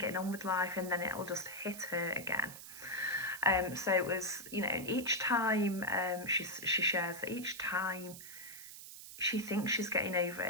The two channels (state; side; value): noise; right; hiss, 13 dB below the sound